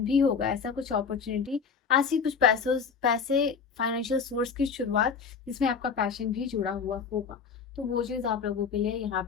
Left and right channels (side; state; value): right; quieter; 6.0 dB